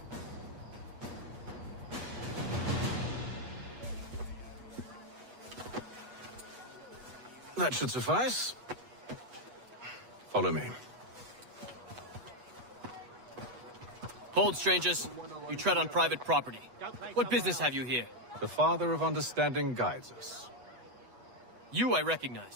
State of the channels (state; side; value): late; left; 8.1 ms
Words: That should suffice. Follow me. Hold, strangers. You tread on private property. What business have you here? The Father of Understanding guides us. You I